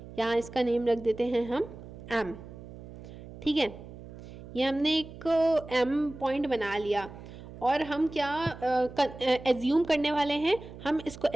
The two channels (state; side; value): noise; right; hum, 15 dB below the sound